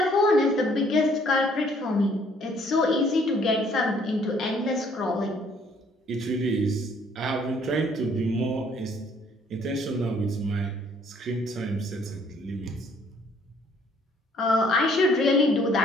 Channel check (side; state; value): both; normal; correlation 0.62